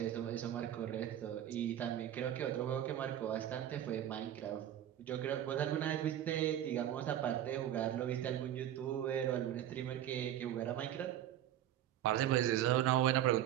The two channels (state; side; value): quieter; left; 11.5 dB